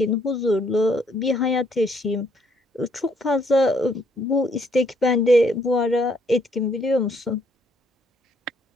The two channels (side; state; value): both; normal; correlation 0.68